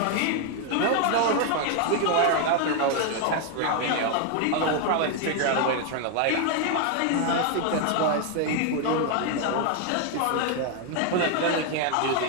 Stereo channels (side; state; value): both; different; correlation 0.01